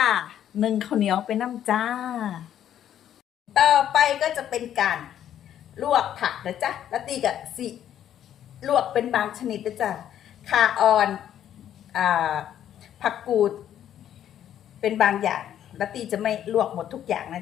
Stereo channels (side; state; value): right; quieter; 10.5 dB